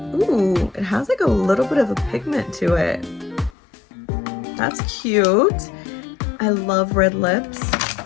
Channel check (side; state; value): right; drops out; at 3.6 s